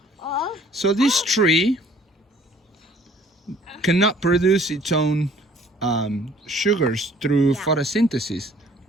So this tree cannot produce its own sugars through photosynthesis,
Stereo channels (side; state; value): both; normal; correlation 0.56